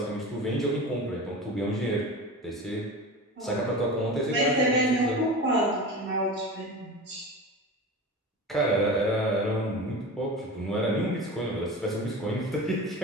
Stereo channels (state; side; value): normal; both; correlation 0.31